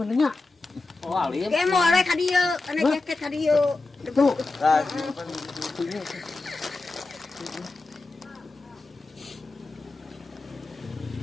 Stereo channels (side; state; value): right; quieter; 3.4 dB